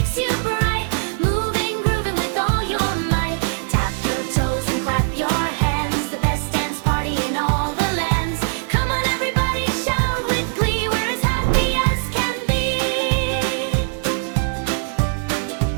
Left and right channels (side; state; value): left; silent; 65 dB below the other